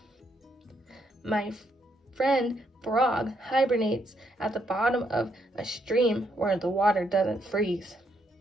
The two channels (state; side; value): normal; both; correlation 0.75